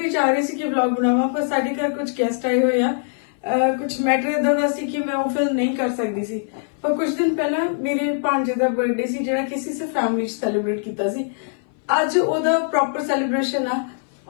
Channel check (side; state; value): right; silent; 60 dB below the other